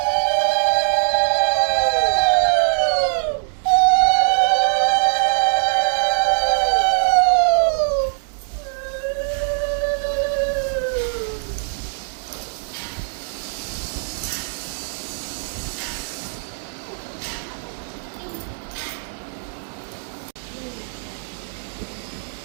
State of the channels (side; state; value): left; silent; digital silence